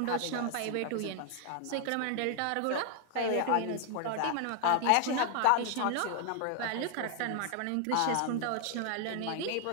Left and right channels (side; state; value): both; different; correlation 0.00